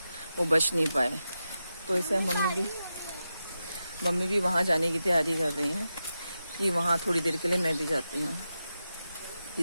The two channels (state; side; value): inverted; both; correlation -0.90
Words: वो बच नहीं पाए। तो इसे मम्मी भी वहाँ जाने की तैयारी कर रही हैं कि वहाँ थोड़ी देर के लिए मैं भी जाती हूँ।